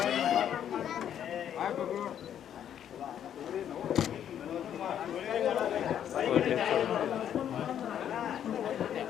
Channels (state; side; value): quieter; right; 9.7 dB